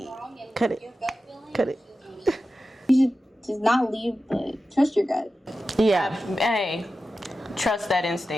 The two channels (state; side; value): normal; both; correlation 0.93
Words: something wrong and Cut it. your gut feeling, Cut it. You should just not leave, but trust your gut. Yeah. Hey, trust that